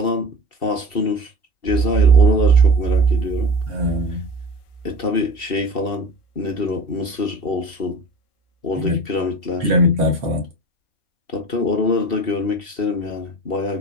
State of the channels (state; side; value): late; right; 2.7 ms